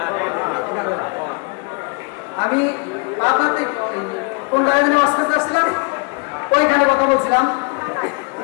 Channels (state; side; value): quieter; right; 31.3 dB